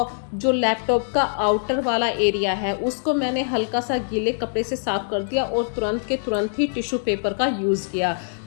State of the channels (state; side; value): silent; right; digital silence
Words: जो लैपटॉप का आउटर वाला एरिया है उसको मैंने हल्का सा गीले कपड़े से साफ कर दिया और तुरंत के तुरंत ही टिश्यू पेपर का यूज़ किया।